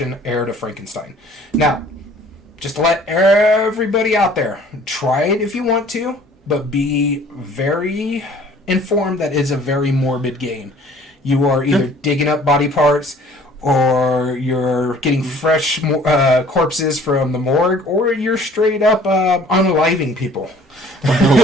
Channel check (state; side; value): normal; both; correlation 0.53